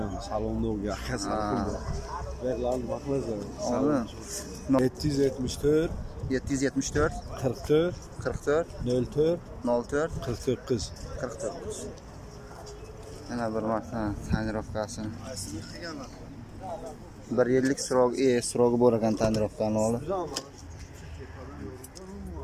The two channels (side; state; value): both; identical; correlation 1.00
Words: Salonda yakasini. Verlar bakmazlar. Salon 774 774 44 04 49 Ana bir marta tanirovkasini. Bir yillik srogi bor ekan tanirovkani olib.